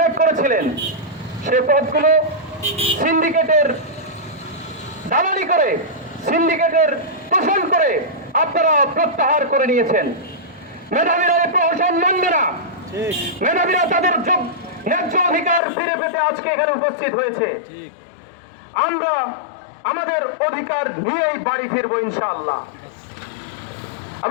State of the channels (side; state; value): right; drops out; at 15.6 s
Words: করেছিলেন, সে পদগুলো সিন্ডিকেটের দালালি করে, সিন্ডিকেটের পোষণ করে আপনারা প্রত্যাহার করে নিয়েছেন। মেধাবীরা এই প্রহসন মানবে না। মেধাবীরা তাদের ন্যায্য অধিকার ফিরে পেতে আজকে এখানে উপস্থিত হয়েছে। আমরা আমাদের অধিকার নিয়েই বাড়ি ফিরবো ইনশাআল্লাহ।